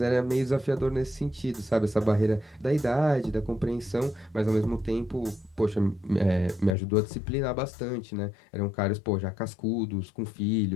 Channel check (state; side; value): drops out; right; at 6.8 s